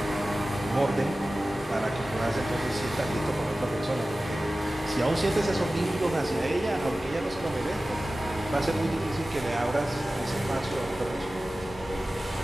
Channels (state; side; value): normal; both; correlation 0.96